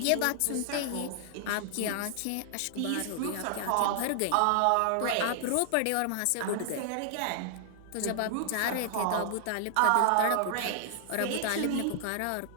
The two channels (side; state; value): both; different; correlation -0.01